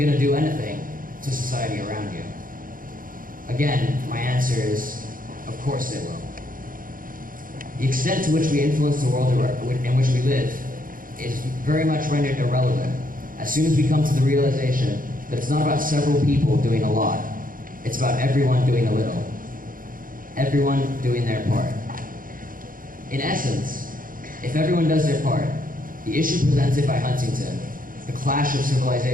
to do anything to society around you. Again, my answer is, of course they will. The extent to which we influence the world in which we live is very much rendered irrelevant as soon as we come to the realization that it's not about several people doing a lot, it's about everyone doing a little. Everyone doing their part. In essence, if everyone does their part, the issue presented by Huntington, the clash of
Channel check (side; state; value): left; late; 0.40 ms